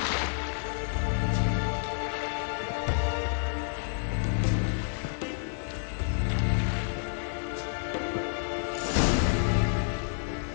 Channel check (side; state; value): right; silent; digital silence